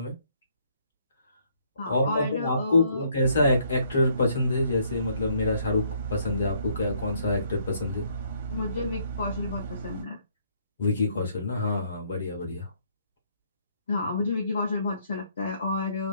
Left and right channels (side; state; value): both; inverted; correlation -0.67